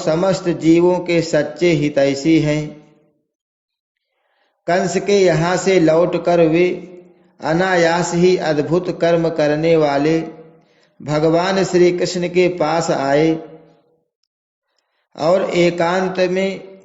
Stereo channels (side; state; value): both; identical; correlation 1.00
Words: जीवों के सच्चे हितैषी हैं। कंस के यहाँ से लौटकर वे अनायास ही अद्भुत कर्म करने वाले भगवान श्री कृष्ण के पास आए और एकांत में